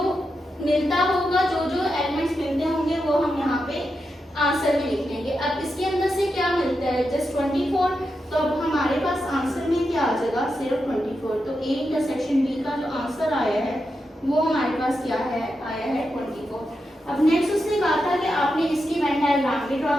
मिलता होगा, जो जो एलिमेंट्स मिलते होंगे वो हम यहाँ पे आंसर में लिख लेंगे। अब इसके अंदर से क्या मिलता है, जस्ट 24, तो अब हमारे पास आंसर में क्या आ जाएगा, सिर्फ 24। तो ए इंटरसेक्शन बी का जो आंसर आया है वो हमारे पास क्या है, आया है 24। अब नेक्स्ट उसने कहा था कि आपने इसकी वेन डायग्राम भी ड्रॉ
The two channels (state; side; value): normal; both; correlation 0.87